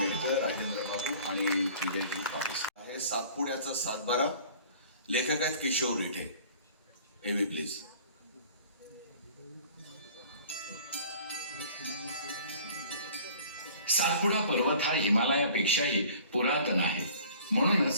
राजेंद्र बाबू आणि विजयजी पाटील. आहे सातपुड्याचा सातबारा. लेखक आहेत किशोर रिठे. एव्ही प्लीज. सातपुडा पर्वत हा हिमालयापेक्षाही पुरातन आहे.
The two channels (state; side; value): inverted; both; correlation -0.48